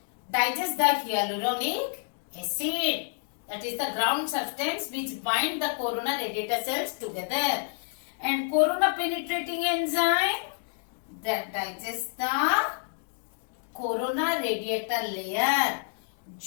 digests the hyaluronic acid. That is the ground substance which bind the corona radiata cells together. And corona penetrating enzyme that digests the corona radiata layer.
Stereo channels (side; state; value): right; silent; digital silence